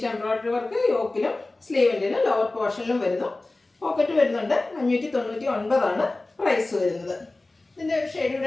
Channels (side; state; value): right; quieter; 3.0 dB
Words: എംബ്രോയിഡറി വർക്ക് യോക്കിലും സ്ലീവിൻ്റിലും ലോവർ പോർഷനിലും വരുന്നു. പോക്കറ്റ് വരുന്നുണ്ട്. 599 ആണ് പ്രൈസ് വരുന്നത്. ഇതിൻ്റെ ഒരു ഷെയ്ഡ്